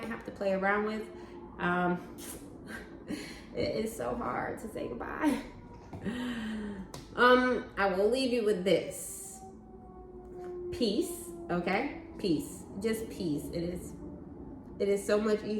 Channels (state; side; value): identical; both; correlation 1.00